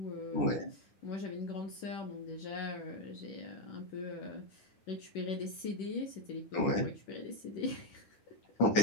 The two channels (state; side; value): late; right; 10 ms